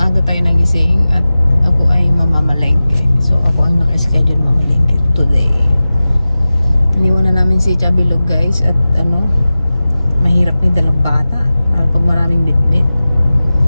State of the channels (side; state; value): both; inverted; correlation -0.96